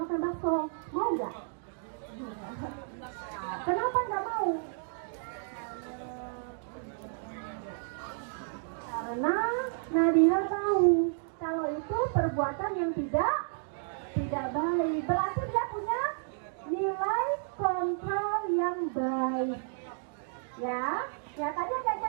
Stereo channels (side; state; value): left; silent; digital silence